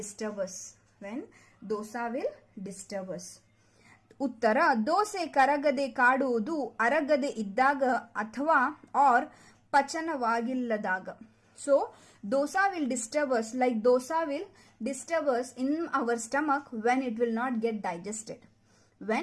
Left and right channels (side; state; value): both; identical; correlation 1.00